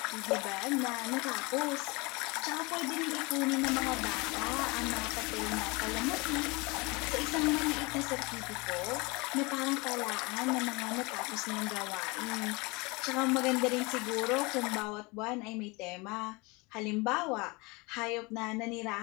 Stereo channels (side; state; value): right; quieter; 26.3 dB